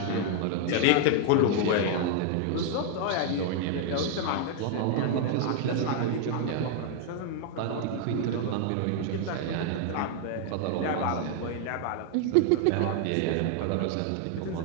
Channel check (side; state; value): both; different; correlation 0.00